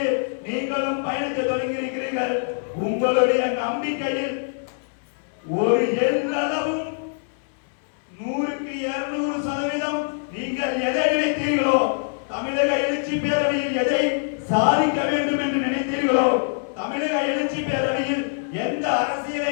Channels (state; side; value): silent; right; 63 dB below the other